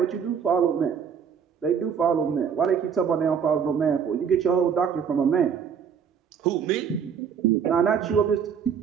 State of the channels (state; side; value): quieter; left; 7.2 dB